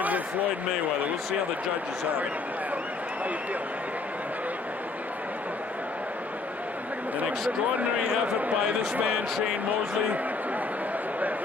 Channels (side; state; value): right; quieter; 3.8 dB